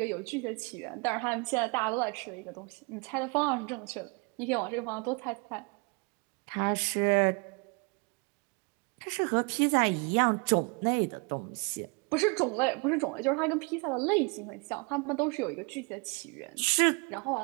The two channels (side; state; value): left; quieter; 31.9 dB